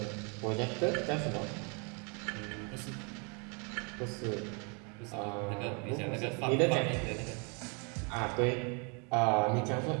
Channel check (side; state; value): left; quieter; 34.7 dB